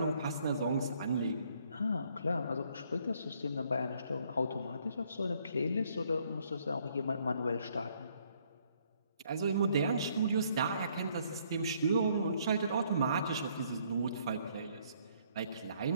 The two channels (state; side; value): inverted; both; correlation -0.67